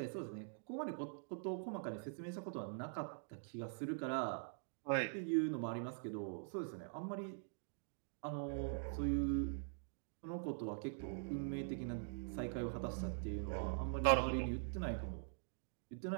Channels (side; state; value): left; silent; digital silence